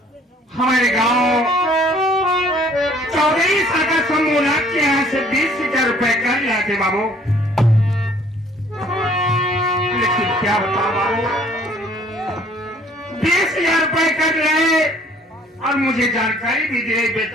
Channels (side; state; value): both; normal; correlation 0.58